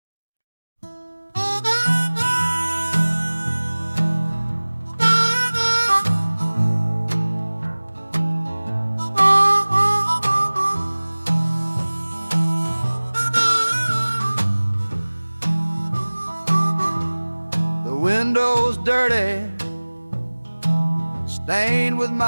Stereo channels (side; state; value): both; inverted; correlation -1.00